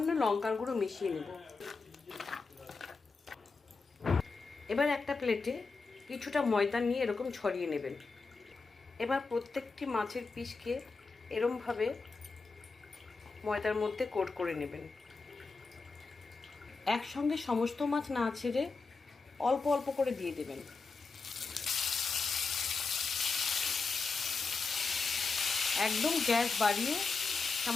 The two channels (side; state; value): right; quieter; 4.3 dB